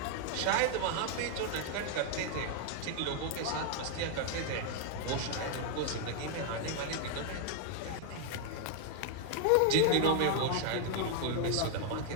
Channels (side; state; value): both; different; correlation 0.00